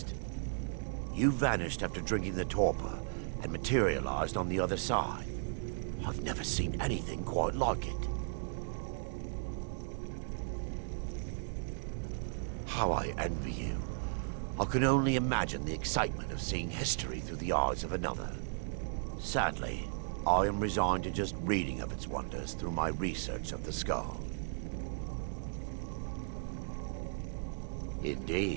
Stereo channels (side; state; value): left; silent; digital silence